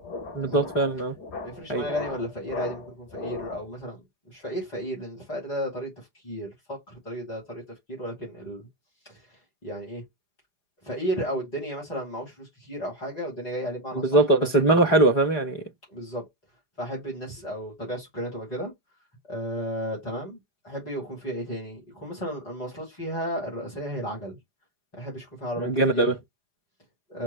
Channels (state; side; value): late; right; 4.9 ms